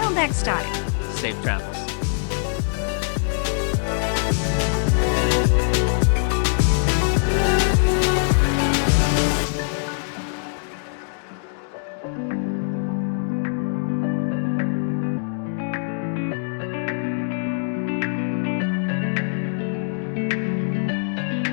next time. Safe travels.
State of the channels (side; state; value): right; silent; digital silence